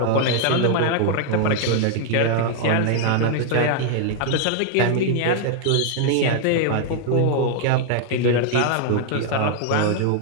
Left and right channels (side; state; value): both; different; correlation 0.00